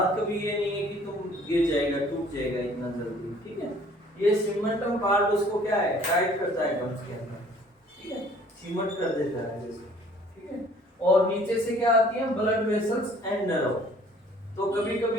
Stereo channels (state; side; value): normal; both; correlation 0.55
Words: कभी ये नहीं है कि तुम गिर जाएगा, टूट जाएगा इतना जल्दी। ठीक है, ये सीमेंटम पार्ट उसको क्या है? टाइट करता है गम्स के अंदर। ठीक है, सीमेंट कर देता है जैसे। ठीक है, और नीचे से क्या आती है? Blood vessels and nerve. तो कभी